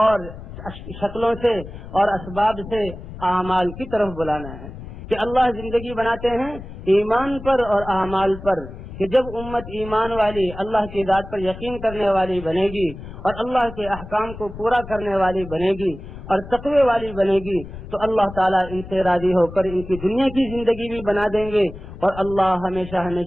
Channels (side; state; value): left; noise; rumble, 13 dB below the sound